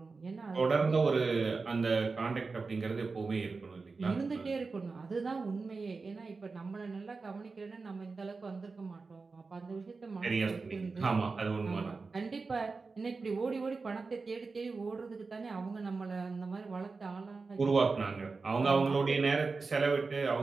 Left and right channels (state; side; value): quieter; left; 4.2 dB